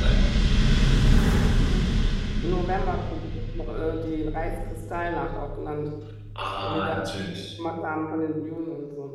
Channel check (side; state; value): both; identical; correlation 1.00